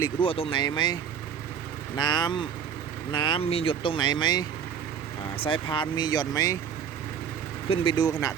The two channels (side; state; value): left; quieter; 7.7 dB